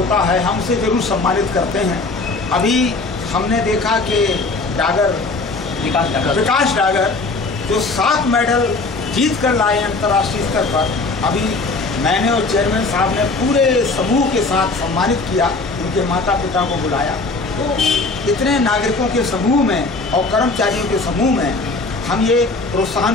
है, हम उसे जरूर सम्मानित करते हैं। अभी हमने देखा कि विकास डागर जो 7 मेडल जीत कर लाए अंतर्राष्ट्रीय स्तर पर, अभी मैंने और चेयरमैन साहब ने पूरे समूह के साथ सम्मानित किया, उनके माता पिता को बुलाया। तो इतने नागरिकों के समूह में और कर्मचारियों के समूह में हम ये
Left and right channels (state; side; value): quieter; right; 3.5 dB